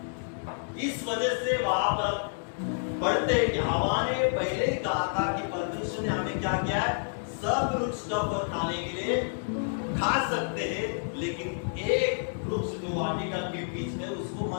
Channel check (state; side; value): silent; right; digital silence